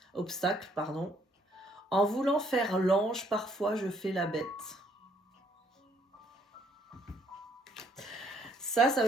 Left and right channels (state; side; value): normal; both; correlation 0.67